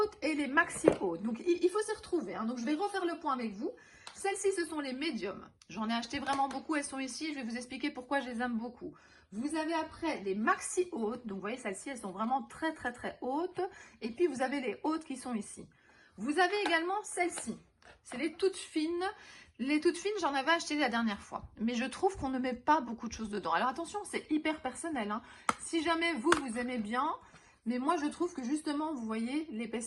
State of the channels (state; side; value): identical; both; correlation 1.00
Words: et les maxi hautes. Donc, il faut s'y retrouver. Hein. Donc, je vais refaire le point avec vous. Celles-ci, ce sont les médiums. J'en ai acheté vraiment beaucoup. Elles sont ici. Je vais vous expliquer pourquoi je les aime beaucoup. Vous avez après les maxi hautes. Donc, vous voyez, celles-ci, elles sont vraiment très, très, très hautes. Et puis, vous avez les hautes qui sont ici. Vous avez également celles-ci. C'est les toutes fines. Les toutes fines, j'en avais acheté la dernière fois. Mais je trouve qu'on ne met pas beaucoup de choses dedans. Alors, attention, c'est hyper personnel. Hein. Si jamais vous aimez bien... Mais moi, je trouve que justement, vous voyez,